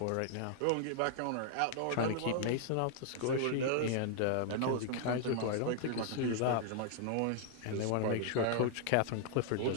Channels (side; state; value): both; different; correlation 0.00